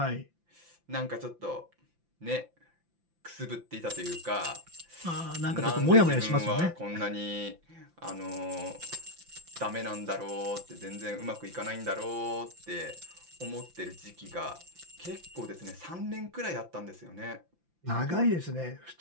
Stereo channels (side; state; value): left; late; 5.8 ms